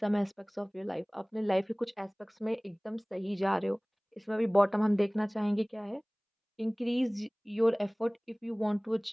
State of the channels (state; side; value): identical; both; correlation 1.00